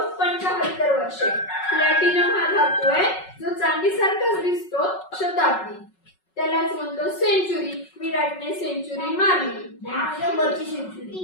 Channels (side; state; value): right; late; 5.4 ms